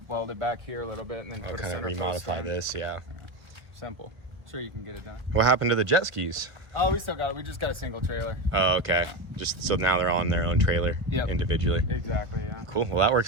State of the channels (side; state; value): left; late; 1.1 ms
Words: weld it back here a little bit, and then put kind of remodify this. Yeah. Simple. Sure, you can get it done. What happened to the jet skis? Oh, we still got it. We just got a single trailer. Oh, okay. Yeah. Just so now they're on their own trailer individually. Exactly. Yeah. Cool. Well, that